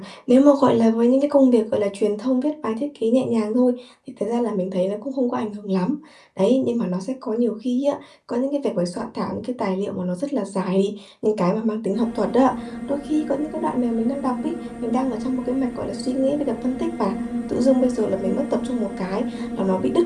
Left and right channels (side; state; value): both; identical; correlation 1.00